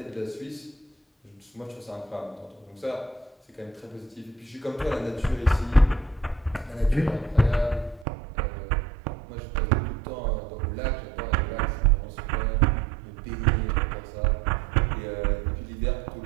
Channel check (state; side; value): drops out; left; at 8.1 s